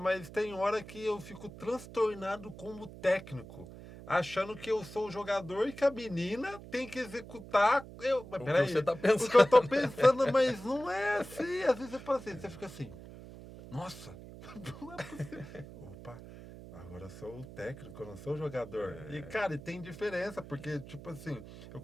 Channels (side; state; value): right; noise; hum, 15 dB below the sound